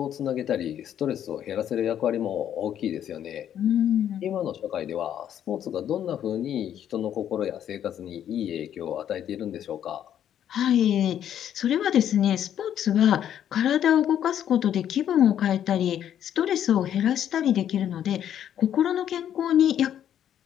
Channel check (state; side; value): quieter; right; 10.1 dB